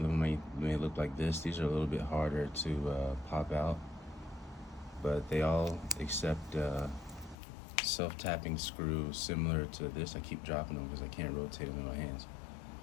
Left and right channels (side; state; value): right; drops out; at 7.4 s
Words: them may look like this. These are a little bit harder to pop out, but they all accept self-tapping screw similar to this. I keep dropping them because I can't rotate them in my hands.